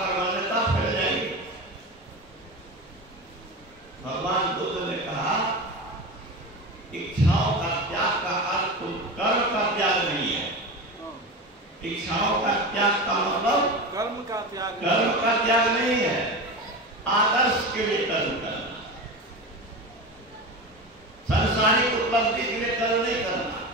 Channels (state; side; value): normal; both; correlation 0.25